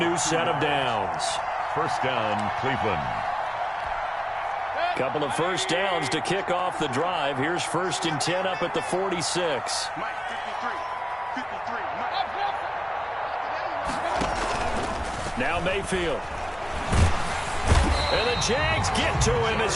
set of downs. First down, Cleveland. Couple of first downs to kick off the drive. Here's 1st and 10 up at the 46. Now Mayfield. And the Jags get to him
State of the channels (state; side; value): identical; both; correlation 1.00